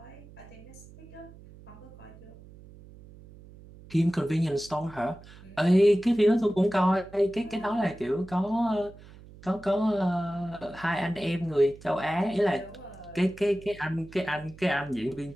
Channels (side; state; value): right; noise; hum, 20 dB below the sound